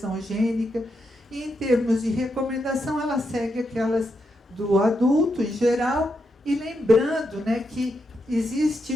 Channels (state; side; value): normal; both; correlation 0.83